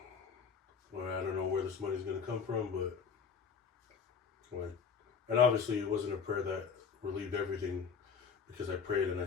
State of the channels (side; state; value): right; quieter; 6.2 dB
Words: well, I don't know where this money's going to come from, but like, and obviously it wasn't a prayer that relieved everything, because I prayed and I